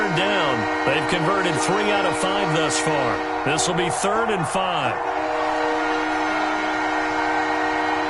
down. They've converted 3 out of 5 thus far. This will be 3rd and 5.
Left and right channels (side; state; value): both; identical; correlation 1.00